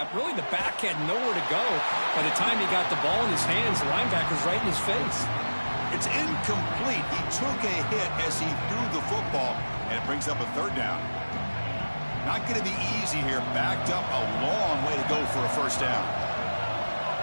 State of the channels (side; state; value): both; inverted; correlation -1.00